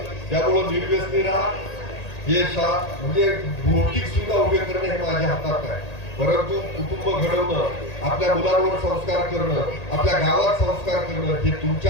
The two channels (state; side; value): late; right; 1.8 ms